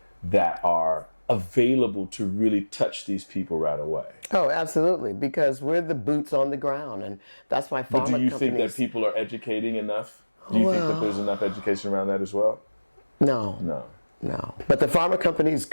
that are available to really touch these people right away? Oh, absolutely, because we're the boots on the ground, and that's why pharma But do you companies... think that people are educating enough? Do you think that there's enough education around that as well? No. But the pharma companies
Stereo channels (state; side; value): inverted; both; correlation -1.00